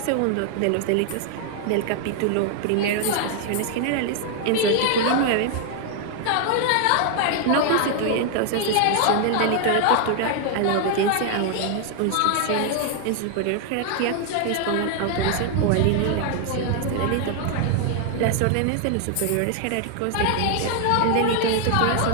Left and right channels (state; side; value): different; both; correlation 0.00